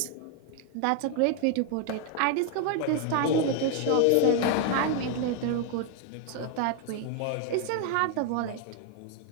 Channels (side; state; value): both; different; correlation 0.00